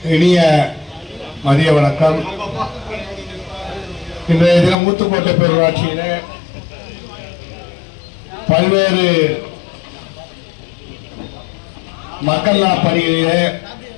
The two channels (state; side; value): drops out; right; at 4.8 s